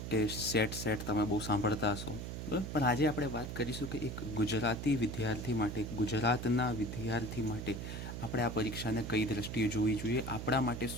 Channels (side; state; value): right; noise; hum, 6 dB below the sound